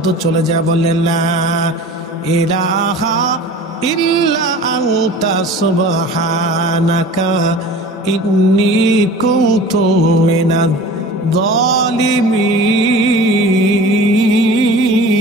চলে যায়, বললেন, লা ইলাহা ইল্লা আনতা সুবহানাকা ইন্নী কুনতু মিনাজ জালিমিন।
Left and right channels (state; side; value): normal; both; correlation 0.40